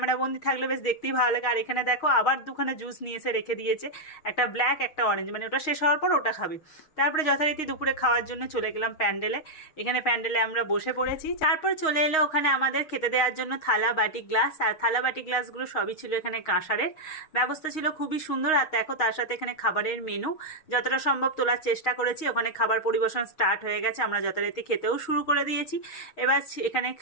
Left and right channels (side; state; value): right; late; 6.4 ms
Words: থাকলে বেশ দেখতেই ভালো লাগে। আর এখানে দেখো আবার দুখানে জুস নিয়ে এসে রেখে দিয়েছে, একটা ব্ল্যাক একটা অরেঞ্জ, মানে ওটা শেষ হওয়ার পর ওটা খাবে। তারপরে যথারীতি দুপুরে খাওয়ার জন্য চলে গেলাম প্যান্ডেলে। এখানে প্যান্ডেলে আমরা বসে পড়েছি। তারপর চলে এলো ওখানে আমাদের খেতে দেওয়ার জন্য থালা বাটি গ্লাস, আর থালা বাটি গ্লাসগুলো সবই ছিল এখানে কাঁসারের। ব্যবস্থা ছিল খুবই সুন্দর। আর দেখো তার সাথে এখানে খাবারের মেনু যতটা সম্ভব তোলার চেষ্টা করেছি। ওখানে খাবার পরিবেশন স্টার্ট হয়ে গেছে, আমরা যথারীতি খেতেও শুরু করে দিয়েছি। এবার এখানে